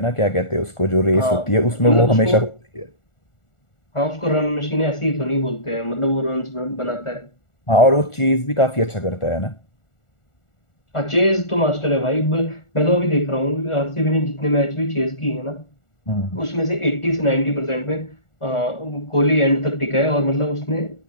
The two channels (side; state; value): right; late; 1.4 ms